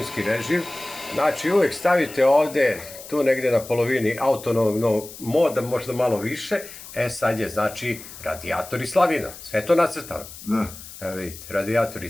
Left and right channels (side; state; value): left; noise; hiss, 15 dB below the sound